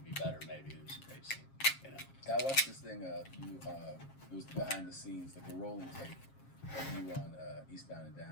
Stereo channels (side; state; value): right; late; 7.4 ms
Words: better. Maybe it was a great scene. You know. I watched this thing. It was behind the scenes, like a rolling tape of you on Eastbound and